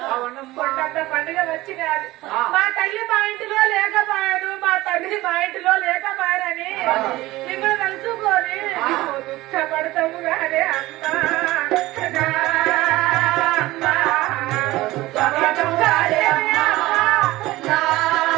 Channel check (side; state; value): left; quieter; 18.2 dB